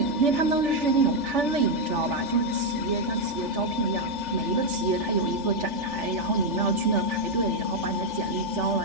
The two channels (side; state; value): left; late; 3.4 ms